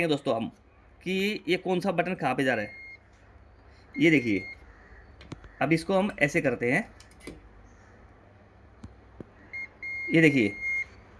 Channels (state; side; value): identical; both; correlation 1.00